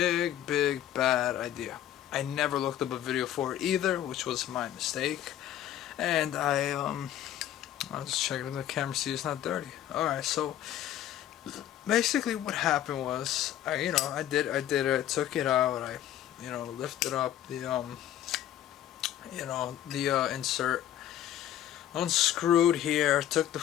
bad idea. I never looked up a video for it either, which was my mistake. And I'll just check it in the camera, see it's not dirty. Alright, so basically what happened was I did it, took it out, I lifted up the insert, unscrewed here, took the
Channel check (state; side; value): quieter; right; 11.7 dB